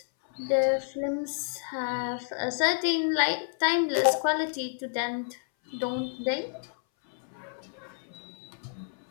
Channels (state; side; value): silent; right; 58 dB below the other